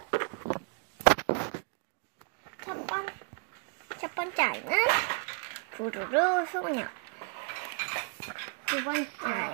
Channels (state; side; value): quieter; left; 39.0 dB